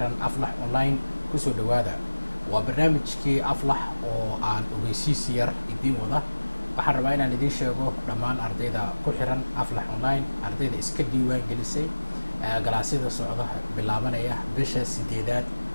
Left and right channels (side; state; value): both; inverted; correlation -1.00